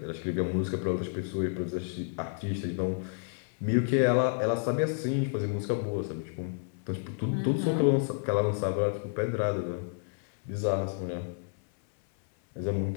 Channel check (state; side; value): silent; right; 58 dB below the other